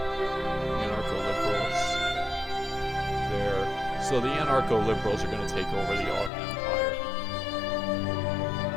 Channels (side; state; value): right; drops out; at 6.3 s